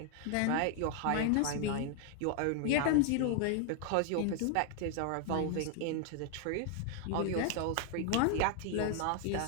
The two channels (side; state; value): both; different; correlation 0.00